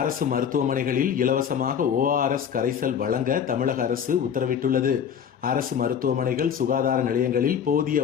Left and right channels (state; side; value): quieter; right; 8.1 dB